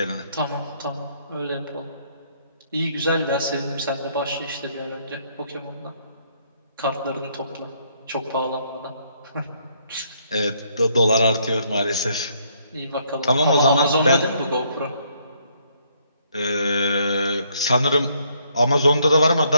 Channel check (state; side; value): inverted; both; correlation -0.69